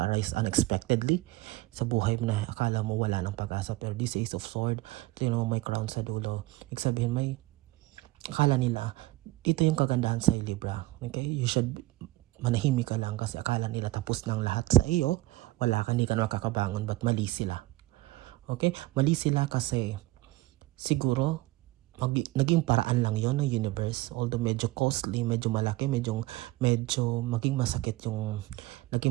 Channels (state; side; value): quieter; left; 18.0 dB